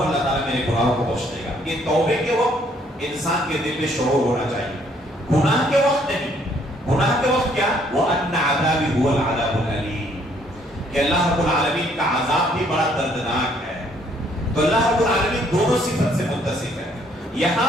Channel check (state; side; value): normal; both; correlation 0.65